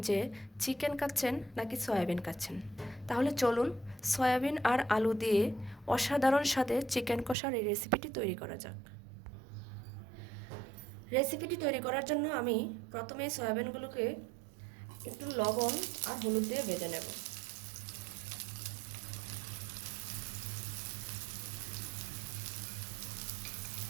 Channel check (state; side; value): drops out; left; at 7.4 s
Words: যে চিকেন খাচ্ছেন নাকি সয়াবিন খাচ্ছেন। তাহলে চলুন সয়াবিন আর আলু দিয়ে অসাধারণ স্বাদে চিকেন কষার এই রেসিপিটি তৈরি করা যাক। রেসিপিটি তৈরি করার জন্য আমি প্রথমে সয়াবিনগুলোকে একটু লবণ আর হলুদ দিয়ে ভেজে নেব।